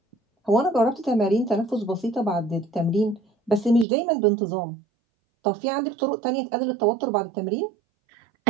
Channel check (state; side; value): drops out; left; at 3.9 s